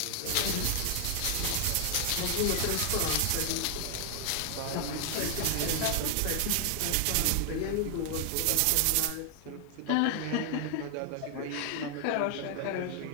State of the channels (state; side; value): different; both; correlation 0.00